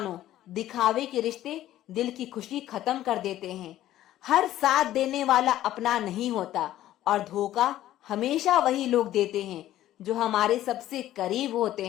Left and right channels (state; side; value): quieter; right; 13.5 dB